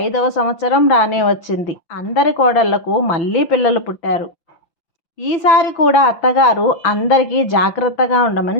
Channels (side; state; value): right; late; 6.0 ms